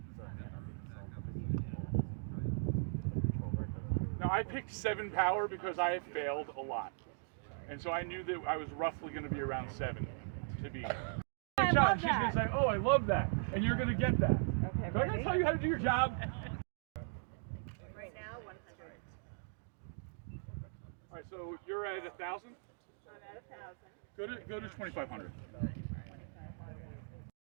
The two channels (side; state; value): left; silent; digital silence